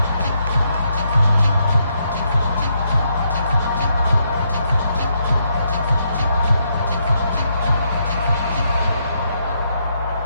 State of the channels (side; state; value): both; inverted; correlation -0.77